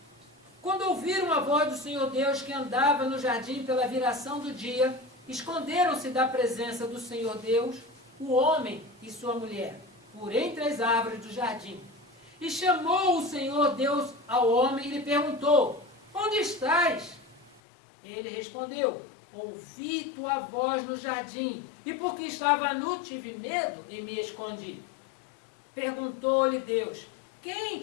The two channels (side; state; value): right; drops out; at 17.6 s